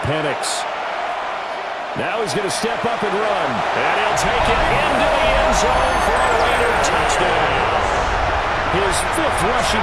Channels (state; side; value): identical; both; correlation 1.00